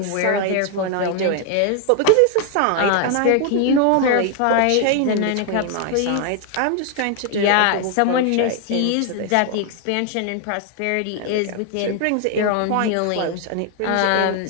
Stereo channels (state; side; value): different; both; correlation 0.00